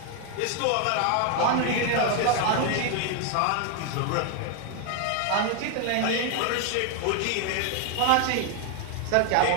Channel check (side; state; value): both; different; correlation 0.01